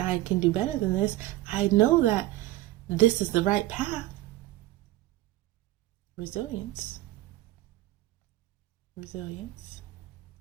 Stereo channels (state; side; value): quieter; left; 16.5 dB